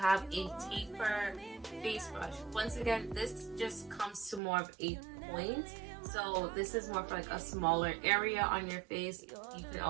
a taper face brush. Once again, this just comes to more of a point. So this is more for like a smaller area on your face. You can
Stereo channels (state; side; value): drops out; left; at 4.4 s